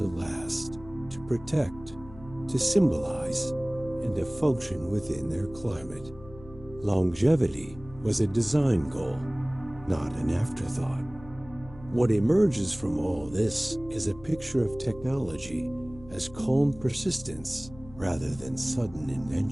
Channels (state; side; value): noise; left; hum, 19 dB below the sound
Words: last, to protect, to symbolize, and to function within their climate. Longevity was a design goal, not an afterthought. What emerges from all this is a picture of technology as calm persistence rather than sudden